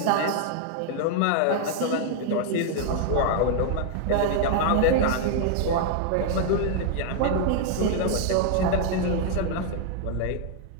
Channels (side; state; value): both; different; correlation 0.00